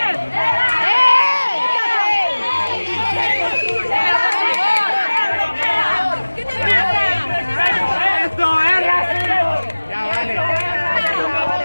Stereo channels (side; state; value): both; inverted; correlation -1.00